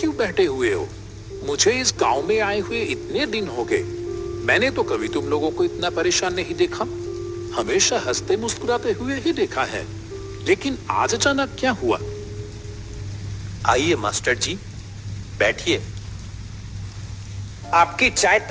बैठे हुए हो? मुझे इस गांव में आए हुए इतने दिन हो गए, मैंने तो कभी तुम लोगों को इतना परेशान नहीं देखा। हमेशा हंसते मुस्कुराते हुए ही देखा है, लेकिन आज अचानक क्या हुआ? आइए मास्टर जी, बैठिए। आपकी चाय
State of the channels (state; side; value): identical; both; correlation 1.00